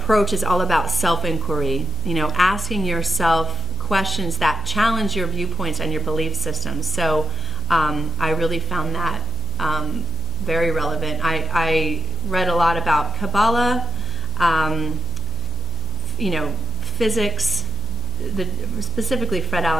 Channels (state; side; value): noise; right; hum, 5 dB below the sound